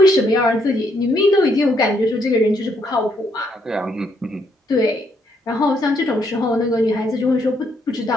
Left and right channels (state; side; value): normal; both; correlation 0.73